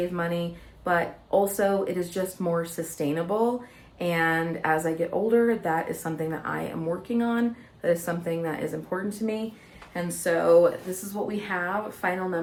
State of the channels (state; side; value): identical; both; correlation 1.00